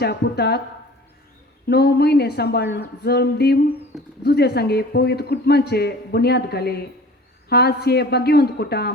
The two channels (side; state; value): both; normal; correlation 0.44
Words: पुताक 9 म्हयने सांबाळून जल्म दिवन जुजे सांगे पवित्र कुटुंबाचे बुन्याद घाले. आज हे भाग्यवंत